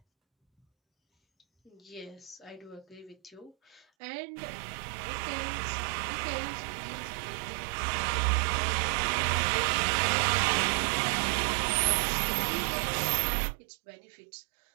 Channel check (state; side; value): drops out; left; at 3.9 s